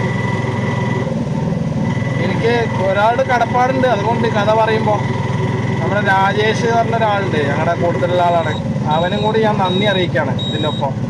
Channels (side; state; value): both; identical; correlation 1.00